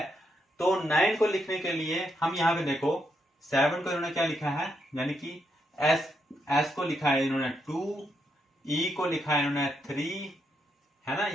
तो 9 को लिखने के लिए हम यहाँ पे देखो 7 को इन्होंने क्या लिखा है, यानी कि S को लिखा है इन्होंने 2, E को लिखा है इन्होंने 3, है ना।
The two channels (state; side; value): normal; both; correlation 0.79